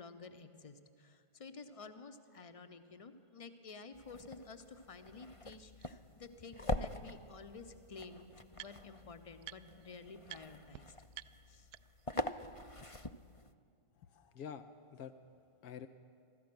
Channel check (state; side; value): late; right; 1.5 ms